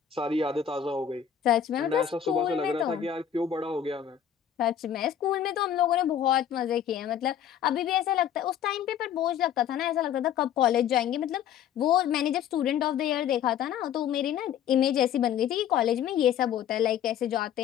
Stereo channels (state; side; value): quieter; right; 9.3 dB